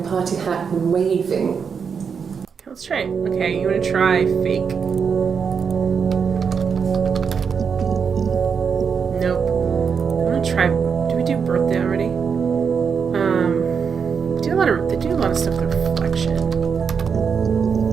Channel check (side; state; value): left; quieter; 6.3 dB